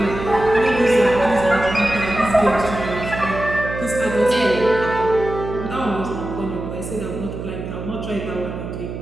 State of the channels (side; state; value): right; noise; hum, 8 dB below the sound